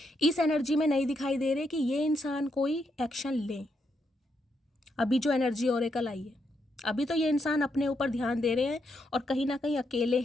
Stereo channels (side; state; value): both; normal; correlation 0.79